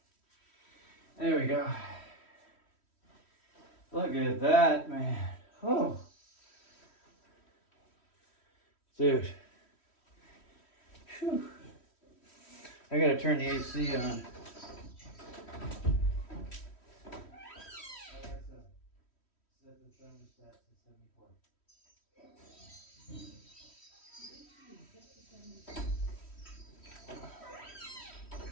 There we go. Look at that, man. Oh. Dude. Whew. I gotta turn the AC on. Alexa, set the thermostat to 74.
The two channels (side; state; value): right; late; 3.1 ms